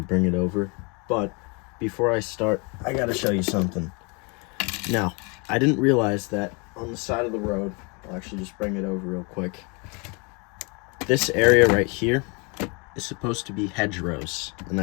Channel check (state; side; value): quieter; right; 31.3 dB